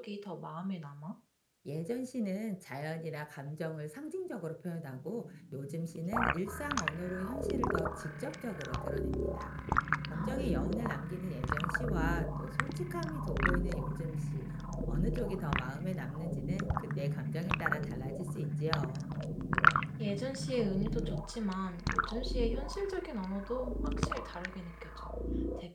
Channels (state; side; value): identical; both; correlation 1.00